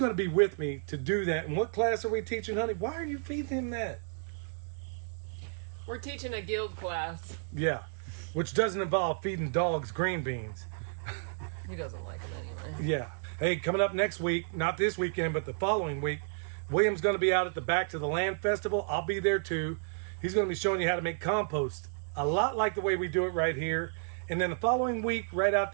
to be with me to do that. And what class are we teaching, honey? Why are you feeding him that? We're teaching a guild class. Yeah, which doesn't involve feeding dogs green beans. He doesn't like it anyway. Yeah. Hey, coming up next week, not this weekend, but the following week, William's going to be out at the Back to the Land Festival. I'll be there too. He's going to be showing you how to make compost, a lot like the way we do it right here. And then the following week, right out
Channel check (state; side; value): silent; left; digital silence